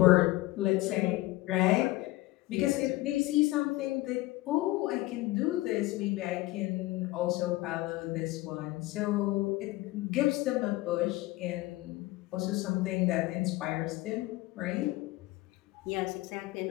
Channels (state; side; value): quieter; right; 19.2 dB